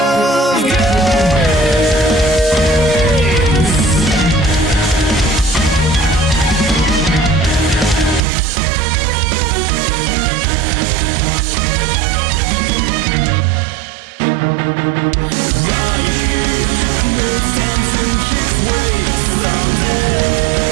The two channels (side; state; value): left; drops out; at 8.2 s